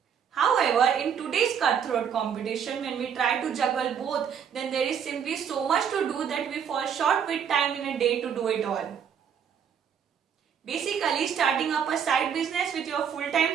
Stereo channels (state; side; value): quieter; left; 7.7 dB